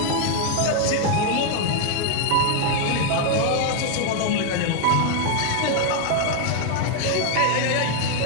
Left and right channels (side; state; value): both; different; correlation 0.00